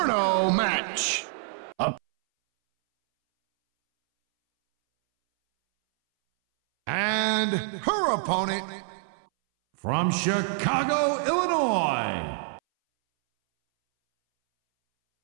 match. And her opponent from Chicago, Illinois.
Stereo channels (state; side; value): silent; left; 61 dB below the other